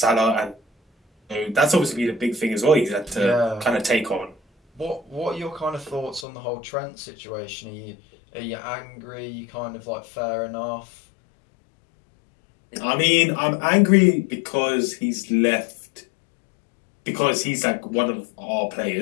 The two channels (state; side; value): drops out; right; at 6.2 s